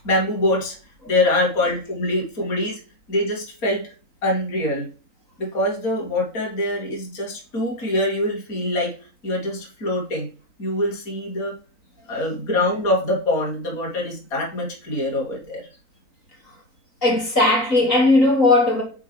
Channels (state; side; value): late; right; 3.9 ms